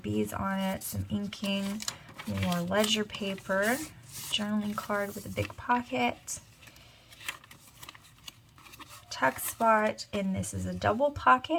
on it. Some inking. More ledger paper. Journaling card with a big pocket. Tuck spot, and this is a double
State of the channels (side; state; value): both; identical; correlation 1.00